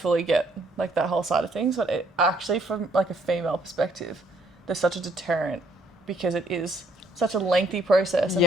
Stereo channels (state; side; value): normal; both; correlation 0.67